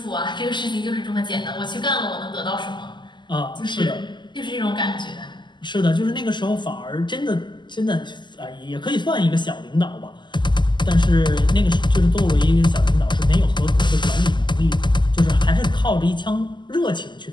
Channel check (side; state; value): right; late; 0.22 ms